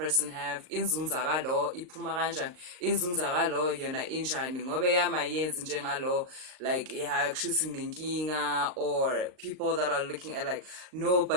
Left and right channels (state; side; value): late; left; 39 ms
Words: have, inzunza kalo iphuma kanjani, inzunza kalo yona injani ngobe yamayenzi njengalo, like yeah kushuthi nginenkinga. Or people that are looking at like, no,